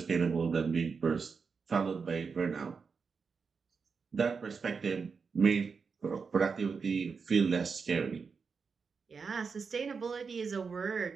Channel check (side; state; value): left; quieter; 5.3 dB